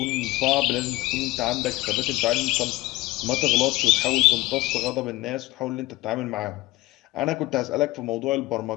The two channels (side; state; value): right; quieter; 19.3 dB